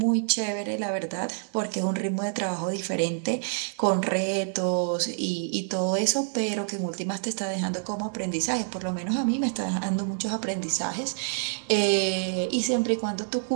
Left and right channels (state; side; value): silent; left; 60 dB below the other